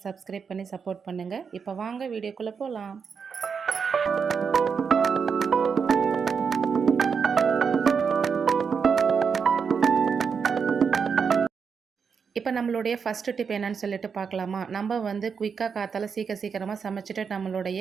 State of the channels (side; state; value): left; quieter; 6.1 dB